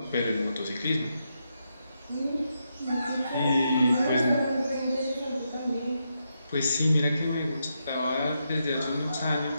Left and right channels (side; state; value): both; inverted; correlation -0.83